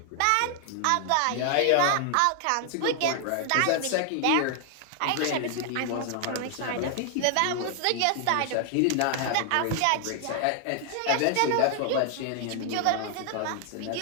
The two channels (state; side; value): different; both; correlation 0.00